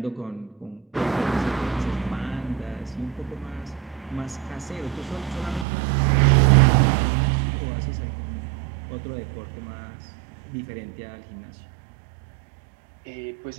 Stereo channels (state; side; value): drops out; left; at 5.7 s